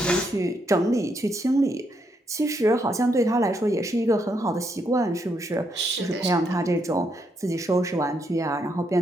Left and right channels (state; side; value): normal; both; correlation 0.77